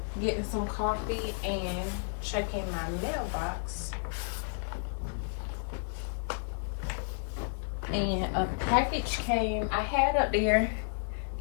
getting some coffee and checking my mailbox. And a package came. I had up there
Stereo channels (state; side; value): silent; right; digital silence